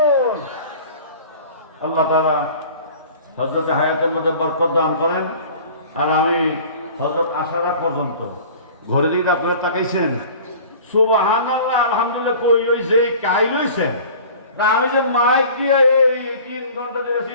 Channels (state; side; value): inverted; both; correlation -0.44